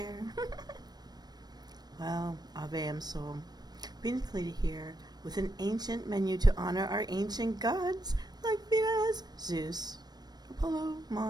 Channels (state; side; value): late; left; 0.19 ms